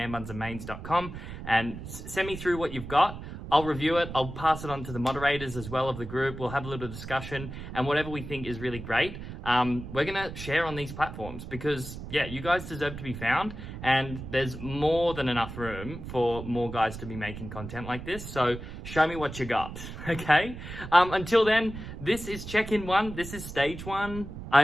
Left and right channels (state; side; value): noise; right; rumble, 10 dB below the sound